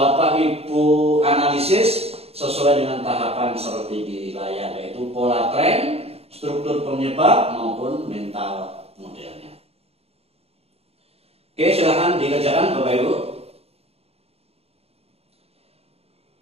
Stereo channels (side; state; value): left; late; 0.29 ms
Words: Ibu analisis sesuai dengan tahapan seperti di layar, yaitu pola tren, struktur penyebab maupun mental modelnya. Oke, silakan dikerjakan Bapak Ibu.